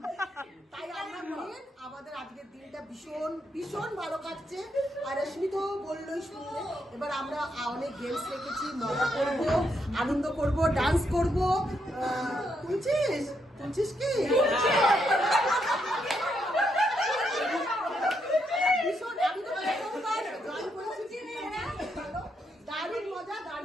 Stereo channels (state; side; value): normal; both; correlation 0.79